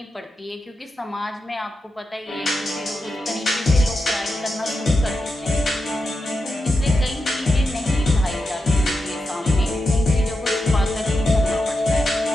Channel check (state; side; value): normal; both; correlation 0.88